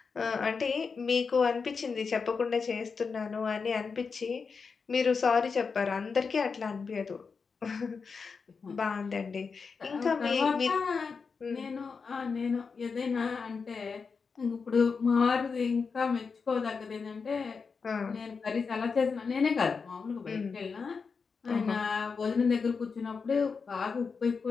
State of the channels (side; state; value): right; quieter; 5.2 dB